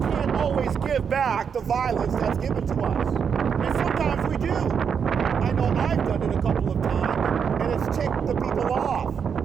always give back the violence that's given to us. And sometimes we do. I know I've done it a couple of times, and it's ticked the people off.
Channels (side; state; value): left; quieter; 6.9 dB